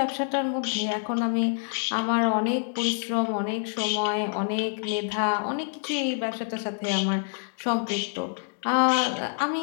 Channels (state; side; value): silent; right; digital silence